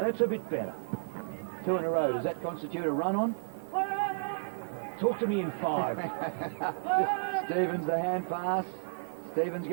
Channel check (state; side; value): silent; left; digital silence